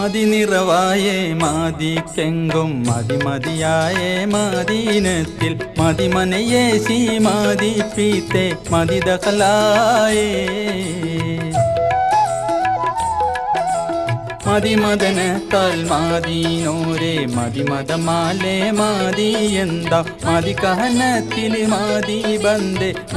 മാതിക്കെങ്കും മതിമതിയായേ മദീനത്തിൽ മതിമനയേ സീ മതിപ്പീത്തെ മതിദഖലായേ മതിമദനത്താൽ മാതീനോരെ മതിമതമാലേ മാതി എന്താ മതി കഹനത്തിൽ മാതി ബന്ദേ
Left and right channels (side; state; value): both; identical; correlation 1.00